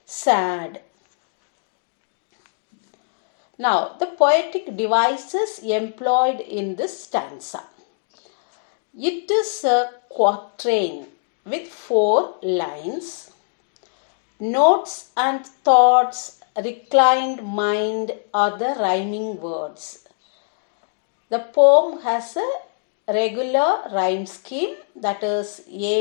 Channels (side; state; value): right; silent; digital silence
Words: sad. Now, the poetic devices employed in this stanza. It is a quatrain with 4 lines. Notes and thoughts, reclined mind are the rhyming words. The poem has a regular rhyme scheme, that is